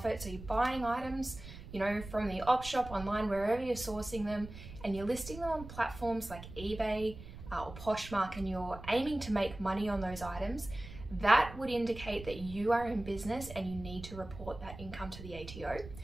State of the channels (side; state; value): right; noise; rumble, 13 dB below the sound